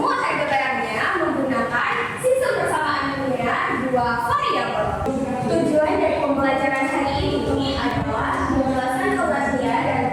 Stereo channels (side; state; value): both; identical; correlation 1.00